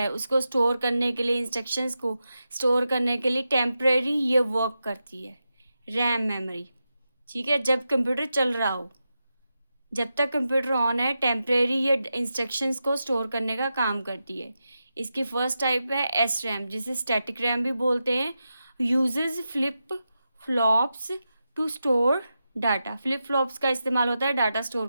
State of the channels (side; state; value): both; inverted; correlation -0.89